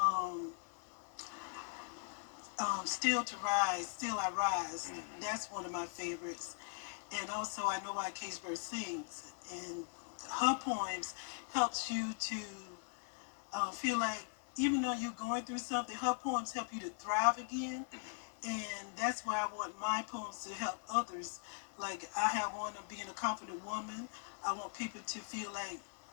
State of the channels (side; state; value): right; silent; 51 dB below the other